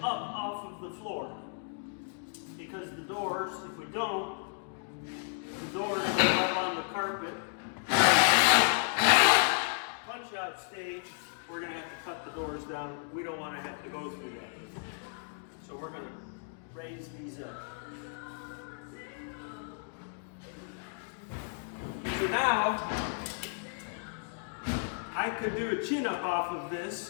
up off of the floor, because the doors, if we don't, the doors go up on the carpet. Punch out stage, we're going to have to cut the doors down. We don't want to have to go through that. So we're going to raise these up. So now, I could do a chin up off of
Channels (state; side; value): silent; right; 56 dB below the other